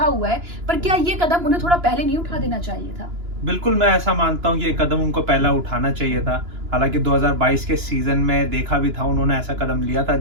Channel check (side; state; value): left; late; 2.9 ms